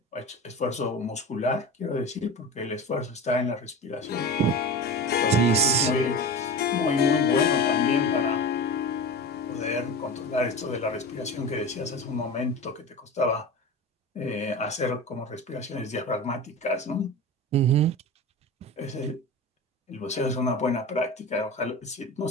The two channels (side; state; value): both; normal; correlation 0.29